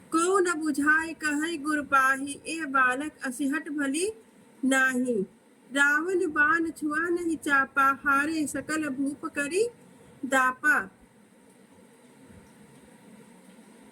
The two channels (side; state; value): both; identical; correlation 1.00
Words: को न बुझाए कहे गुर पाही, ए बालक असिहट भली नाही, रावण बाण छुआ नहीं चापा, हारे सकल भूप करी